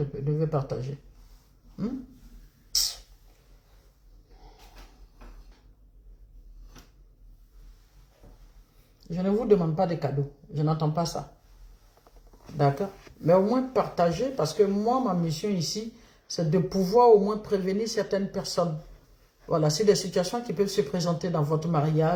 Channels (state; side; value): identical; both; correlation 1.00